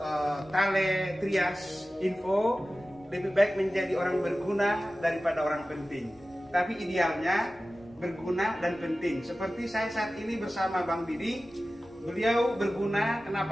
Tale Trias Info, lebih baik menjadi orang berguna daripada orang penting. Tapi idealnya berguna dan penting. Seperti saya saat ini bersama Bang Didi. Beliau berguna,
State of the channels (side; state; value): left; noise; rumble, 29 dB below the sound